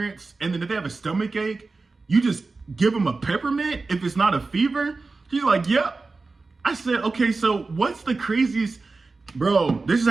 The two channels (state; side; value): quieter; left; 3.8 dB